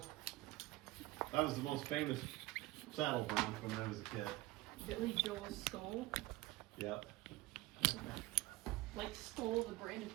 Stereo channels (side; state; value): left; quieter; 18.8 dB